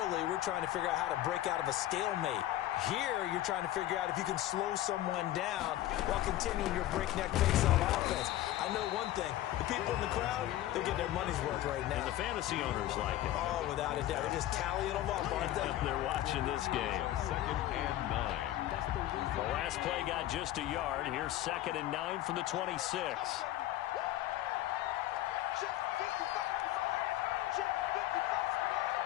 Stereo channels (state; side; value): quieter; right; 14.2 dB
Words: we're trying to figure out how to break out of a stalemate. Here, you're trying to figure out if you can slow someone down while continuing your breakneck pace on offense. I know one thing. The people in the crowd, they're getting their money's worth right now. And the fantasy owners like it. Oh, without a doubt. They're just tallying them up, aren't they? They're watching this game. Second and 9. The last play got just a yard. Here's 2nd and 9 from the 26.